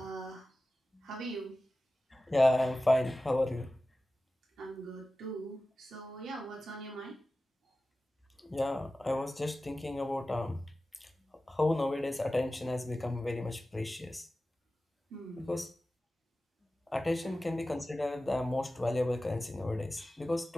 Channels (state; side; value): normal; both; correlation 0.95